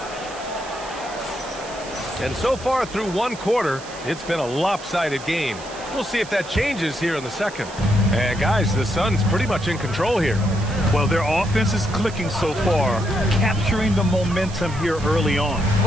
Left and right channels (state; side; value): noise; right; hiss, 17 dB below the sound